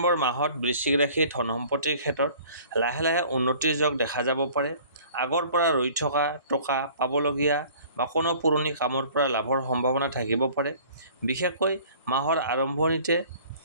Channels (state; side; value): inverted; both; correlation -0.50